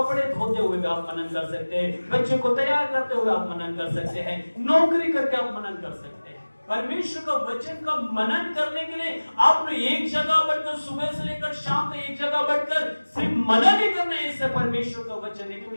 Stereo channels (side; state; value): both; inverted; correlation -1.00